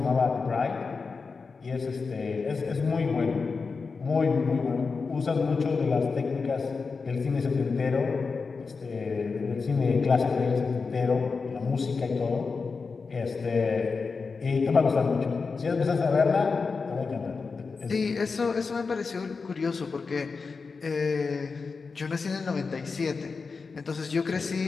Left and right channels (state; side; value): quieter; right; 4.7 dB